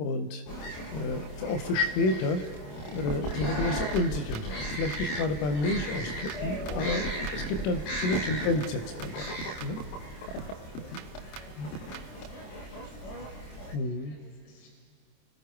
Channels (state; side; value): late; right; 27 ms